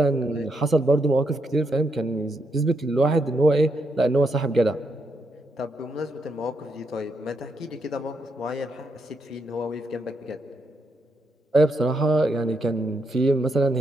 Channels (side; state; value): both; normal; correlation 0.79